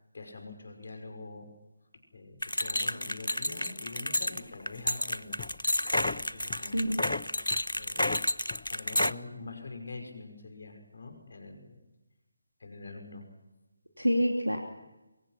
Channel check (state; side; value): inverted; both; correlation -0.93